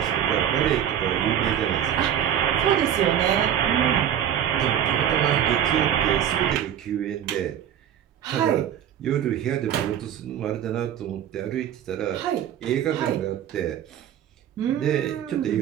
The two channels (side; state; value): left; quieter; 10.0 dB